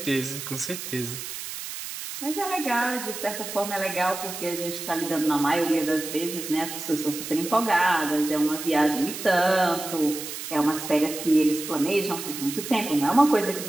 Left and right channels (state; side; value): noise; right; hiss, 8 dB below the sound